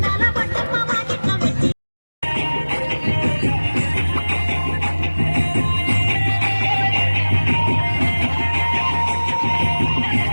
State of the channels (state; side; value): inverted; both; correlation -1.00